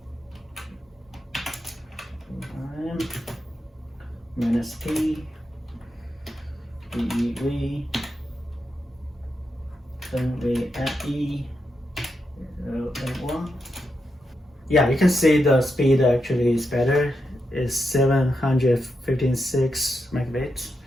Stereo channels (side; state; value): both; normal; correlation 0.85